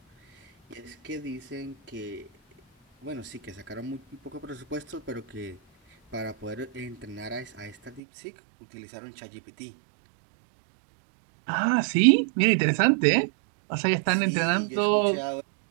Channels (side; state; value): left; drops out; at 8.0 s